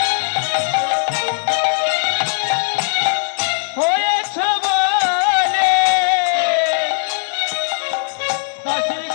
হয়েছ বলে দাসির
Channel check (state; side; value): silent; right; digital silence